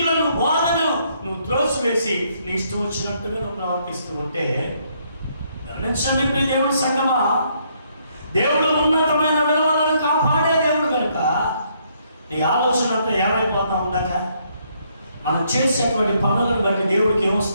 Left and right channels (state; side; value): inverted; both; correlation -0.71